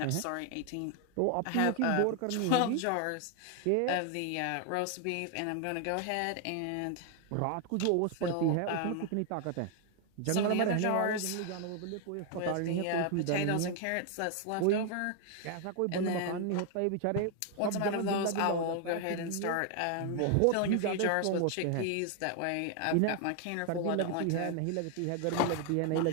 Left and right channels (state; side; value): different; both; correlation 0.00